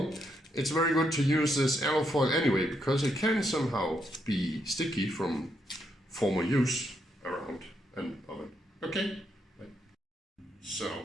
it's very good to use this alufoil anyway, because it can somehow be sticky from former use around an oven. Okay,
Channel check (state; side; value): normal; both; correlation 0.78